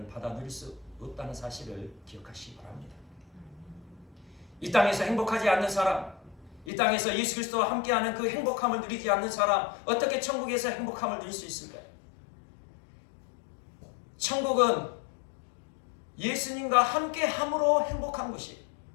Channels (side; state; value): right; drops out; at 6.7 s